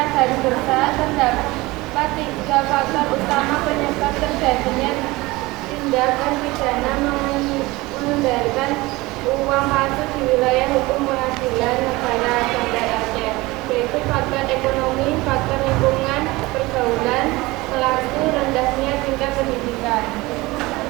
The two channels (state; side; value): quieter; left; 21.1 dB